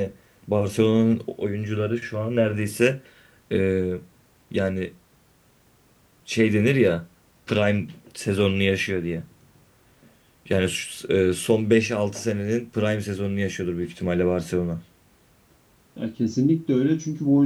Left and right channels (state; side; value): identical; both; correlation 1.00